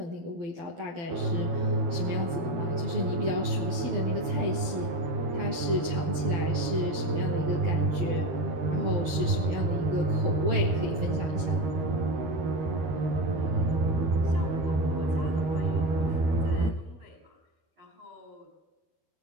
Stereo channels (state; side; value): late; left; 12 ms